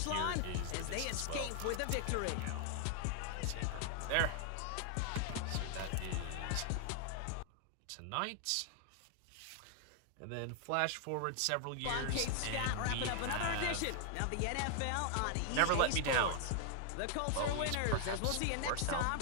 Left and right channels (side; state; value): both; different; correlation 0.00